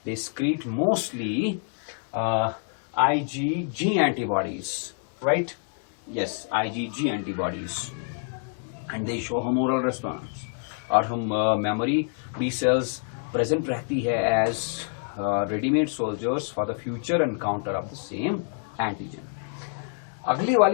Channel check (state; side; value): silent; right; 60 dB below the other